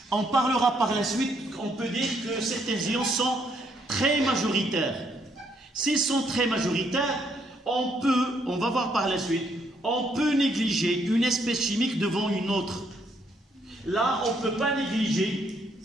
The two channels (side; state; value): both; normal; correlation 0.72